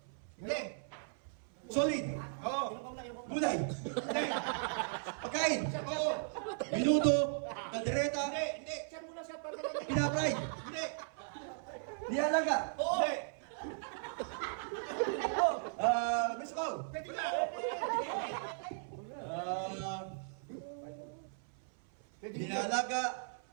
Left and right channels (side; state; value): left; silent; 53 dB below the other